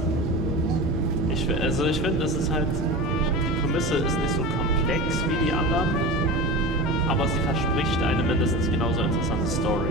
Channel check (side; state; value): both; normal; correlation 0.29